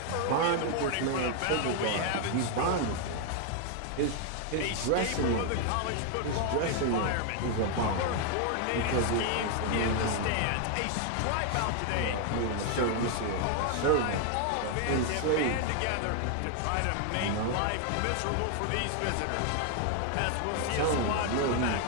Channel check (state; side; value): different; both; correlation 0.00